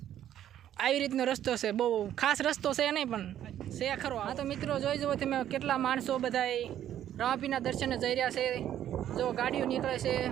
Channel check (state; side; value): quieter; left; 11.1 dB